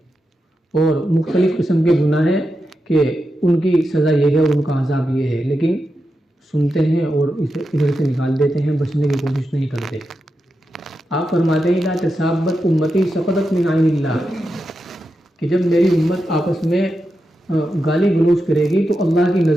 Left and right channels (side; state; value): both; normal; correlation 0.88